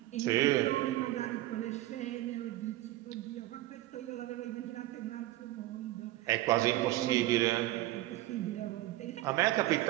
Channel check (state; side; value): quieter; left; 16.5 dB